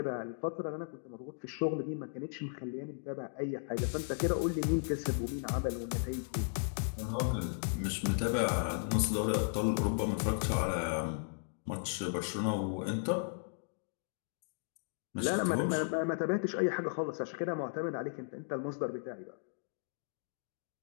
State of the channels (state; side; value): silent; right; digital silence